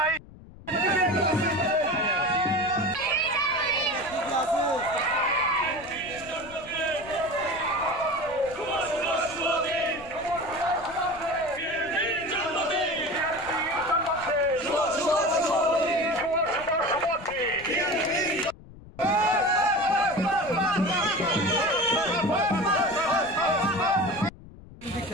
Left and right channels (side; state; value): left; noise; rumble, 19 dB below the sound